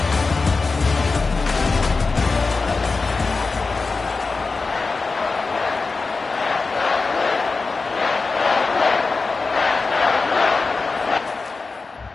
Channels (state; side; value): quieter; right; 4.1 dB